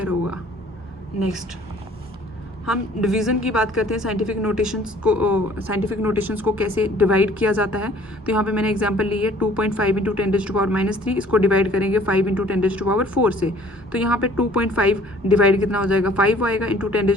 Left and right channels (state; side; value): normal; both; correlation 0.54